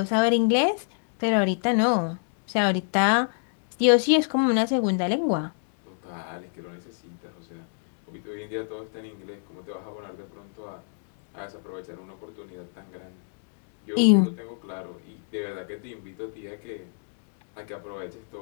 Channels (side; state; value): right; silent; digital silence